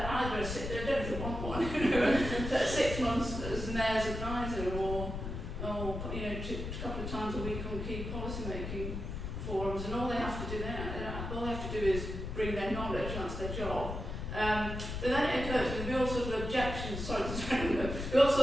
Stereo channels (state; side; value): noise; left; rumble, 5 dB below the sound